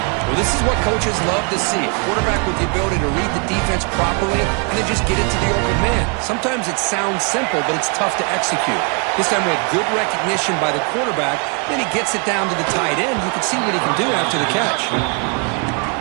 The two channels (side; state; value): left; quieter; 36.1 dB